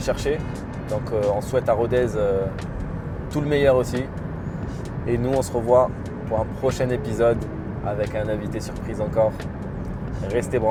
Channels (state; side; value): identical; both; correlation 1.00